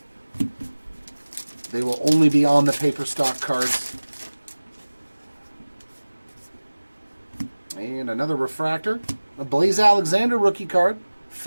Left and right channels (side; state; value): both; inverted; correlation -1.00